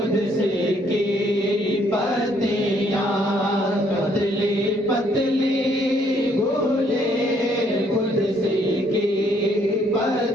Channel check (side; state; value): both; normal; correlation 0.67